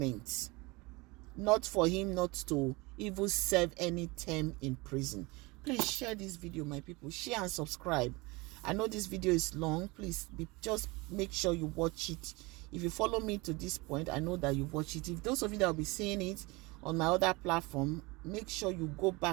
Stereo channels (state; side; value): quieter; left; 24.5 dB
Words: not for him not to even serve any term in prison. Please share this video, my people. Share and subscribe. I know this video is long. Please just make sure you watch it. If you follow me to this point, I know that you watch it. If those of you that will be seeing it on my other platform, make sure you go